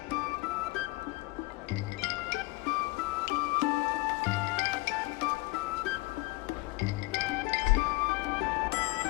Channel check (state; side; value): quieter; right; 23.4 dB